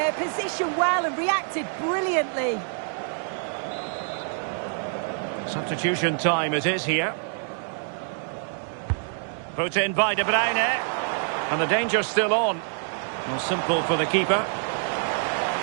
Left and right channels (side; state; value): left; silent; 59 dB below the other